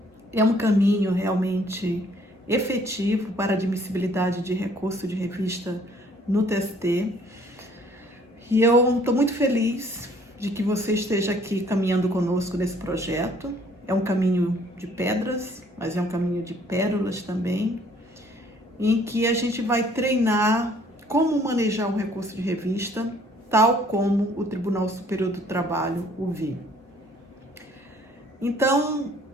É um caminho realmente efetivo para admissibilidade de recurso de revista no TST. E eu estou muito feliz de que você esteja aqui caminhando conosco nesse projeto. É um caminho de pedras, mas é um caminho de pérolas também, em que a gente vai treinar como manejar um recurso de revista, tal como o Tribunal Superior do Trabalho o viu. Então,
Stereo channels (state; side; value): normal; both; correlation 0.60